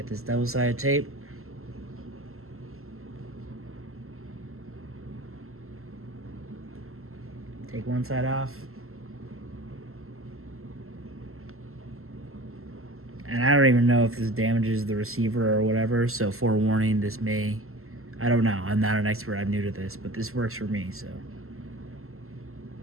this double-sided tape. Take one side off. And I don't even know if this damages the receiver or whatever, so forewarning, this may, I don't know, I'm not an expert, I'm new to this, but this works for me, so.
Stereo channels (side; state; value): left; late; 0.62 ms